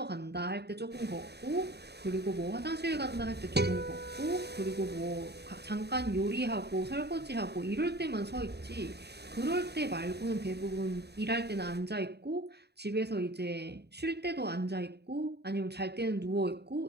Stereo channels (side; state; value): left; late; 0.48 ms